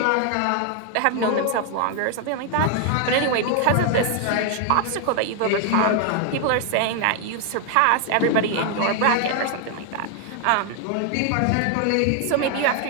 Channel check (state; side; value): different; both; correlation 0.00